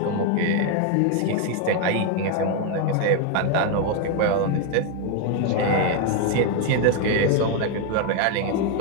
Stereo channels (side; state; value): both; different; correlation 0.01